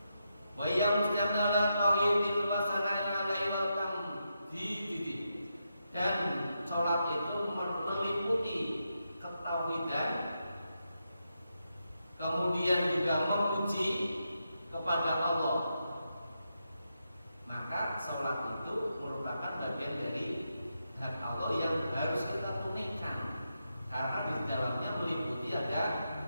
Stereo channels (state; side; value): inverted; both; correlation -0.85